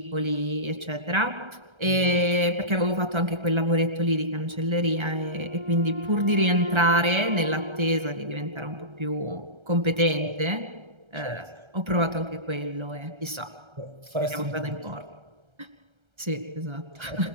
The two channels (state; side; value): late; left; 1.3 ms